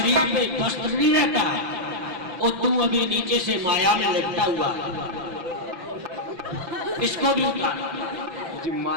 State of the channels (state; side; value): late; left; 5.9 ms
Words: पे वस्त्र नहीं रहता, और तू अभी नीचे से माया में लिपटा हुआ, इसको भी उतार। जी